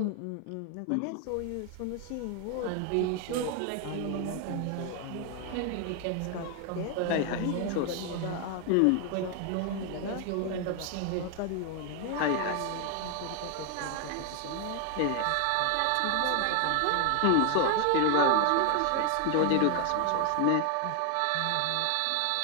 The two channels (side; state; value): both; different; correlation 0.00